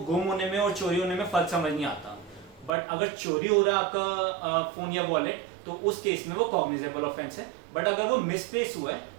गुम होने में और चोरी होने में फर्क समझ नहीं आता, बट अगर चोरी हो रहा है आपका फोन या वॉलेट तो उस केस में वो कॉग्निजेबल ऑफेंस है, बट अगर वो मिसप्लेस हुआ है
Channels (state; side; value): drops out; left; at 2.7 s